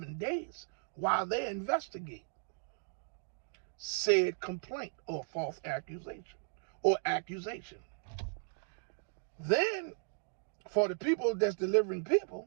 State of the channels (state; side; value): silent; left; digital silence